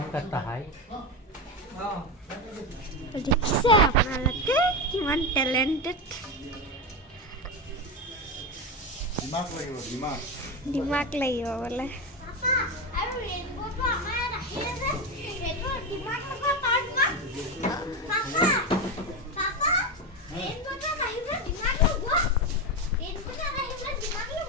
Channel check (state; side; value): normal; both; correlation 0.16